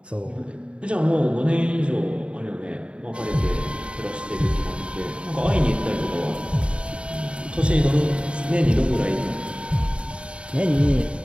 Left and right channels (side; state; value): left; late; 0.058 ms